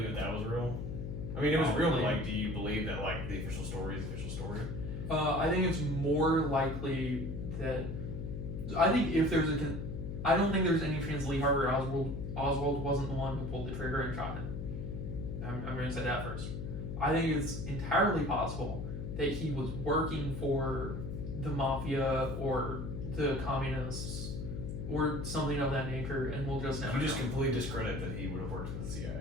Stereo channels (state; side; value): noise; left; hum, 5 dB below the sound